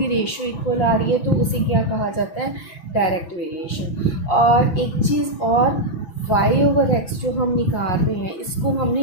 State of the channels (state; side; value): late; right; 6.0 ms